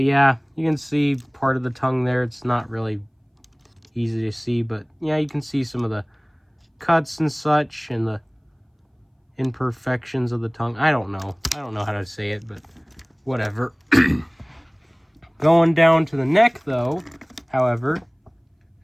yeah, you can see part of the tongue there. It's not really easy to see, but yeah, you can see some of the cuts and such and the imperfections of the tongue. I don't know how to say it, but whatever. Going down to the neck, though, however,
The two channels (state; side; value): identical; both; correlation 1.00